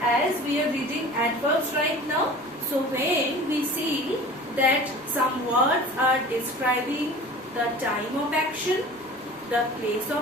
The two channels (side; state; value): right; noise; rumble, 29 dB below the sound